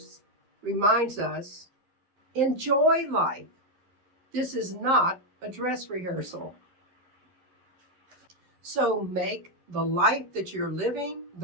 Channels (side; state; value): left; late; 11 ms